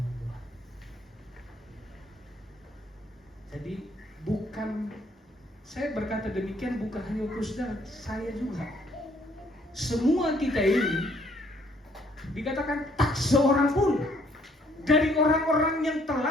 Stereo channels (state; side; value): normal; both; correlation 0.64